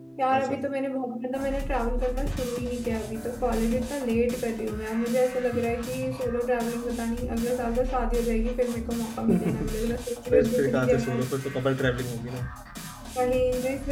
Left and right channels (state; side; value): identical; both; correlation 1.00